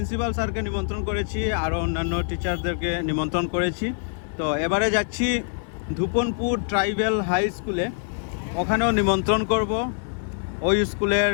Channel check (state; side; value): silent; right; 62 dB below the other